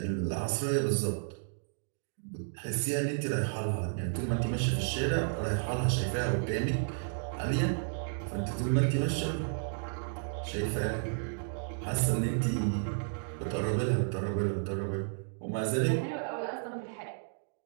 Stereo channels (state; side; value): silent; left; digital silence